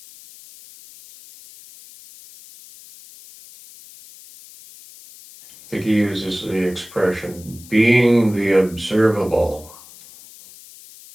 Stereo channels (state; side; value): noise; left; hiss, 21 dB below the sound